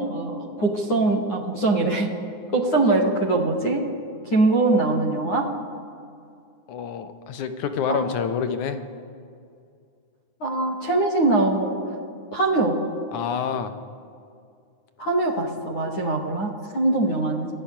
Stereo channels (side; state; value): right; late; 9.6 ms